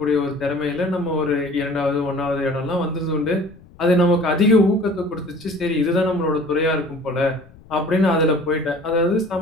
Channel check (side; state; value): left; noise; rumble, 24 dB below the sound